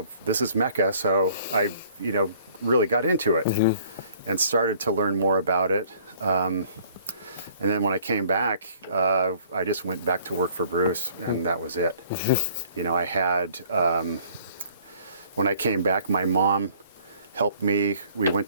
Mecca. So I, really got into it mm-hmm. and started to learn more about it. And then when I came back, I just went back to work for Bruce, and that was it. Mm-hmm. I had, when I came back, my mom helped me. We went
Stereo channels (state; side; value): inverted; both; correlation -0.57